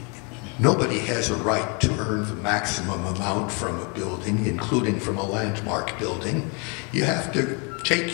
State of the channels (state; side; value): quieter; right; 33.5 dB